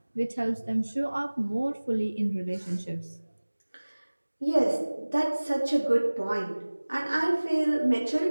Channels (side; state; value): both; inverted; correlation -1.00